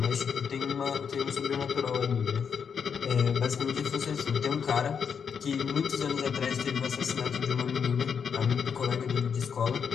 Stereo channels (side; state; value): right; quieter; 6.8 dB